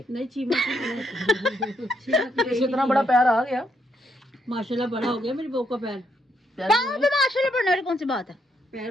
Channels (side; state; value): both; normal; correlation 0.77